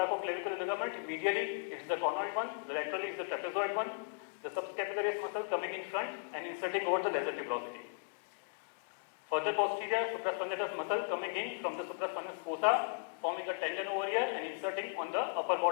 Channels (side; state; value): right; silent; digital silence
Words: ligament. Medially it is the conoid one, laterally it is the trapezoid one. The subscapularis muscle coming in front and inserting over the lesser tuberosity. Further posterior, supraspinatus muscle coming in from the supraspinatus fossa, forming a tendon over here and inserting on the upper